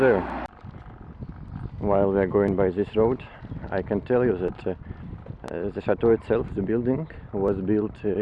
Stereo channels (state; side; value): identical; both; correlation 1.00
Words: While we are going by this road, I can tell you that the chateau itself, the building, was built